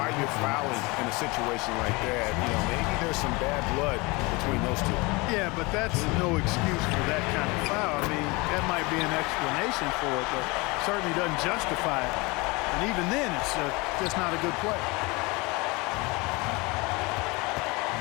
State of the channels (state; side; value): quieter; right; 25.6 dB